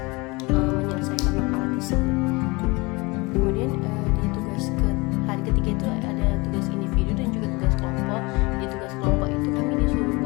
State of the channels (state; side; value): quieter; right; 25.3 dB